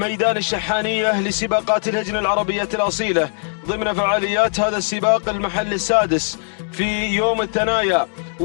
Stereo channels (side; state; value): right; silent; digital silence